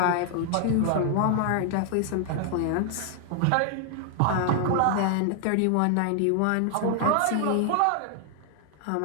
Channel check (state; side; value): different; both; correlation 0.00